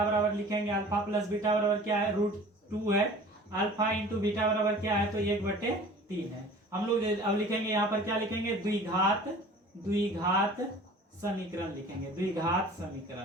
बराबर लिखेंगे, अल्फा प्लस बीटा बराबर क्या है, √2 है, अल्फा इंटू बीटा बराबर क्या है, तो 1/3 है। हम लोग अब लिखेंगे यहाँ पर क्या लिखेंगे, द्विघात समीकरण लिखेंगे। द्विघात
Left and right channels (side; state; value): both; normal; correlation 0.45